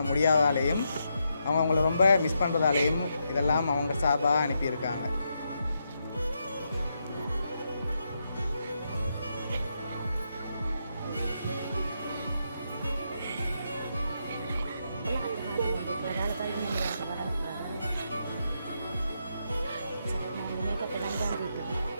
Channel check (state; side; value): inverted; both; correlation -0.82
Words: முடியாதாலேயும் அவங்க அவங்கள ரொம்ப மிஸ் பண்ணுறதாலேயும் இதெல்லாம் அவங்க சார்பாக அனுப்பியிருக்காங்க.